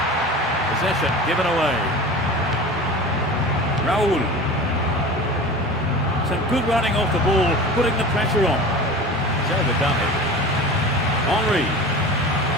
Possession given away. Raul. Some good running off the ball, putting the pressure on. He's overdone it. Henry.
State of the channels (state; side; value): normal; both; correlation 0.35